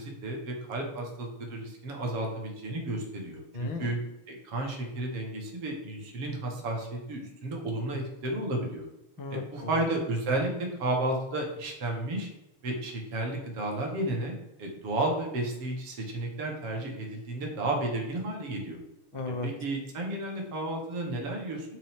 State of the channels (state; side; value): late; left; 7.2 ms